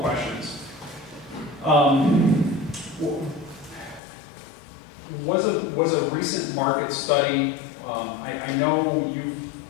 Was a recent market study, I know you've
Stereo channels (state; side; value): drops out; right; at 4.0 s